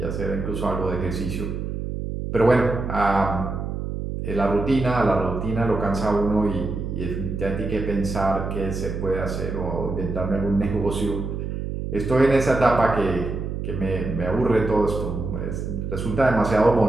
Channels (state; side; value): noise; right; hum, 4 dB below the sound